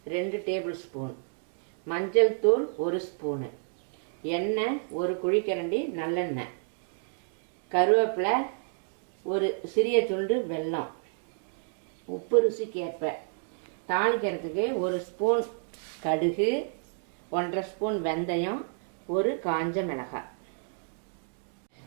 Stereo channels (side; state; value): left; silent; digital silence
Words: 2 டேபிள் ஸ்பூன், மஞ்சள் தூள் 1 ஸ்பூனு, எண்ணெய் 1 குழிக்கரண்டி நல்லெண்ணெய், கருவேப்பிலை, ஒரு சிறிய துண்டு வெல்லம், உப்பு ருசிக்கேற்ப, தாளிக்கிறதுக்கு 1 ஸ்பூன் கடுகு, 1/2 ஸ்பூன் வெந்தயம், ஒரு காஞ்ச மிளகாய்.